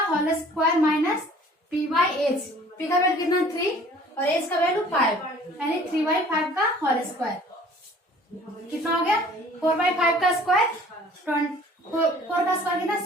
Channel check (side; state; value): both; normal; correlation 0.51